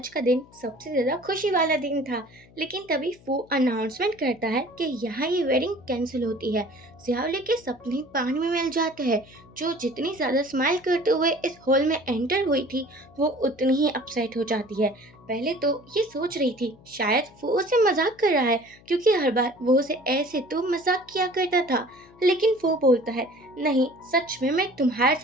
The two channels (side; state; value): left; noise; hum, 26 dB below the sound